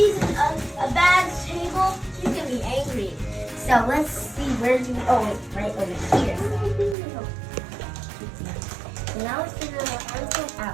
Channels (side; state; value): left; drops out; at 7.0 s